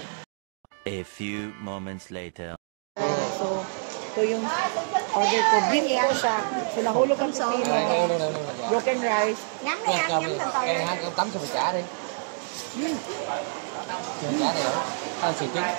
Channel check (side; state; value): left; silent; digital silence